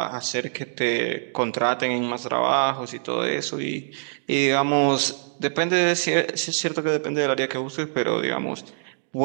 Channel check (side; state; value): left; silent; digital silence